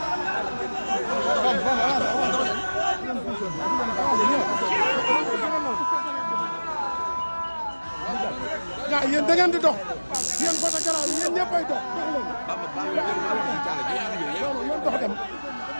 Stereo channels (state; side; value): inverted; both; correlation -1.00